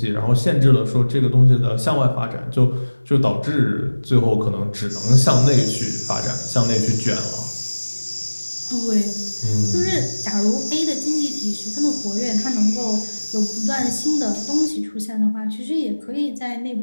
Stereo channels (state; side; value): inverted; both; correlation -1.00